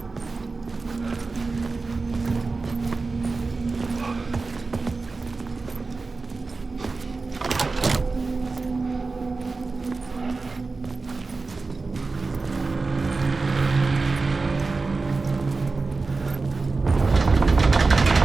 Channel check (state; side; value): quieter; left; 3.9 dB